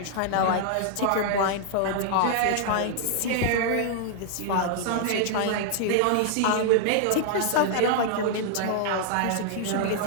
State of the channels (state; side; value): different; both; correlation -0.01